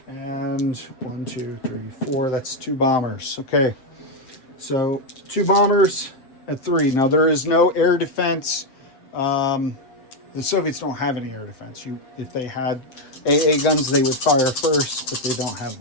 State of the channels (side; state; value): right; late; 7.7 ms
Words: And 1, 2, 3, 4. That's 2 bombers. Okay. So 2 bombers at 3. Now there is no air defense. The Soviets don't have any air defense. If they had AA guns, they would fire first, but they don't have